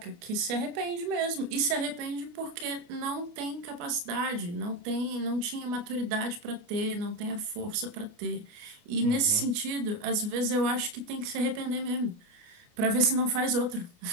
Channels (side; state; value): left; late; 28 ms